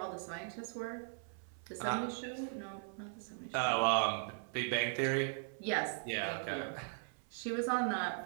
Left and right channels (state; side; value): silent; left; 52 dB below the other